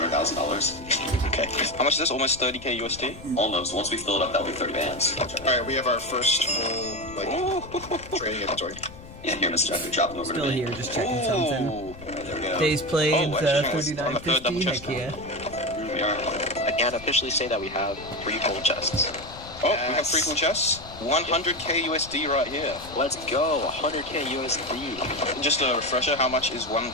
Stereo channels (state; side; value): noise; left; rumble, 16 dB below the sound